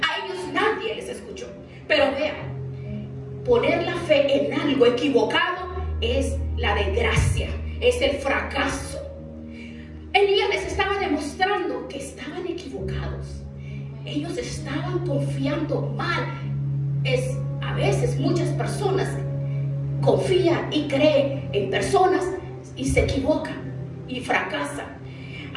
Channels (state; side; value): identical; both; correlation 1.00